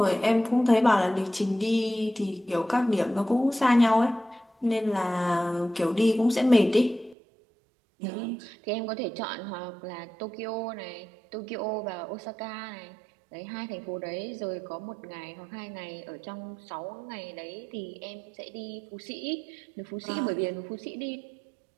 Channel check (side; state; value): left; drops out; at 7.2 s